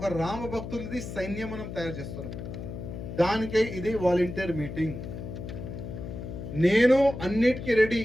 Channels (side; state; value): left; noise; hum, 8 dB below the sound